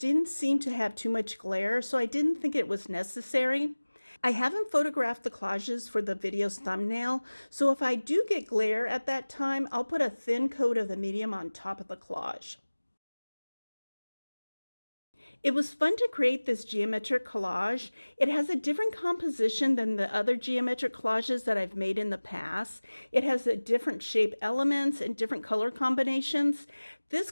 seem to have too much glare, so I didn't think it was necessary. I haven't photographed the collages for the video's thumbnail, so if I do get glare at that time, I'll put a thin coat of the medium on top of the collage. It was fun to create this geometric collage. It has a different composition than the other geometric collages that I've made in the past. It has a different shape elements and different color combinations. This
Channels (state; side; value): inverted; both; correlation -1.00